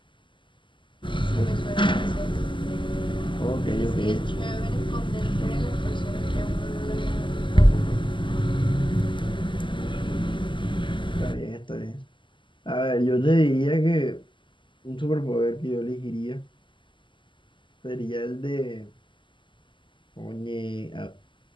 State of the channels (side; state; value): right; late; 0.24 ms